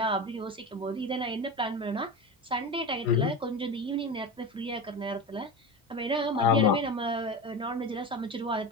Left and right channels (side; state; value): both; normal; correlation 0.24